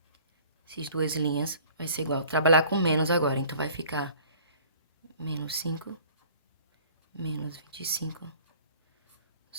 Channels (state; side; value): inverted; both; correlation -0.51